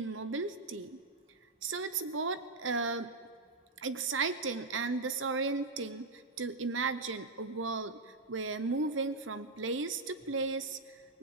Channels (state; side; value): quieter; left; 3.4 dB